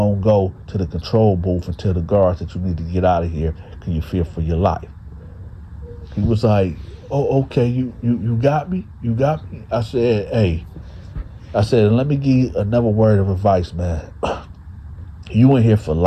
to go to the control booth and tell the guards that you need to get out of here because you fear for your life. He was like, oh, okay, you got me? You got me? I said, hey. I said, let me give you another word of advice, man. You in here for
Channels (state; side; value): identical; both; correlation 1.00